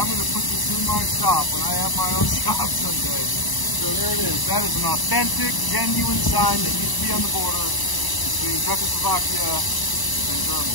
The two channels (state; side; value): late; right; 1.0 ms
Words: going to put this in my shop when I have my own shop someday. So there it is. That is an authentic, genuine sign that used to be on the border between Czechoslovakia and